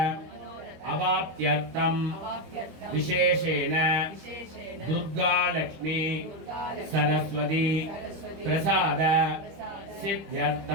अवाप्त्यर्थं विशेषेण दुर्गा लक्ष्मी सरस्वती प्रसाद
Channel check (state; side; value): late; left; 25 ms